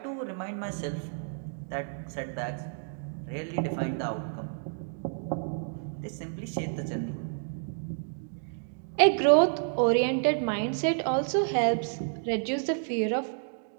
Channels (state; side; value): silent; left; 58 dB below the other